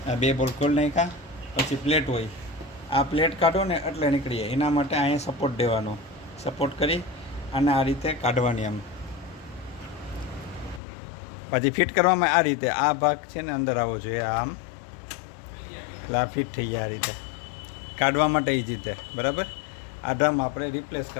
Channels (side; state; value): right; drops out; at 10.8 s